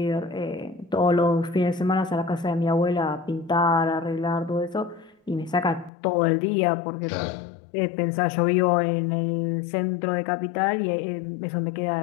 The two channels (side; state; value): right; drops out; at 5.9 s